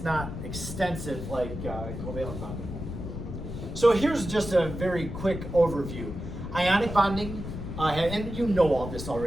not extensive like covalent bonding. So here's just a very quick overview. Ionic bonding, and you know all this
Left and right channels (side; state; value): left; noise; rumble, 7 dB below the sound